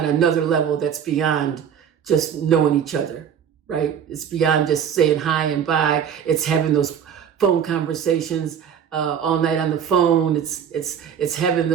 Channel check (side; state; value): left; quieter; 8.3 dB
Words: level that's beyond just knowing each other, right? It's beyond just saying hi and bye. It's having those phone conversations all night on the phone. It's having